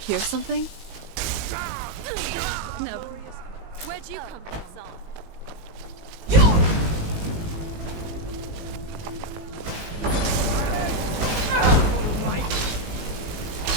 something? No. Where'd you come from?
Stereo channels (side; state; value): left; late; 19 ms